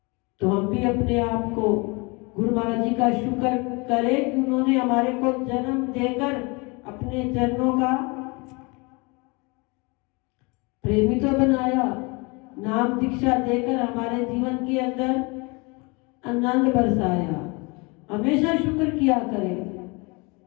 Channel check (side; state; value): right; quieter; 28.3 dB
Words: तो हम भी अपने आप को गुरु महाराज जी का शुक्र करें कि उन्होंने हमारे को जन्म देकर अपने चरणों का प्रेमी तो बनाया, नाम दीक्षा देकर हमारे जीवन के अंदर आनंद बरसाया। हमेशा शुक्र किया करें।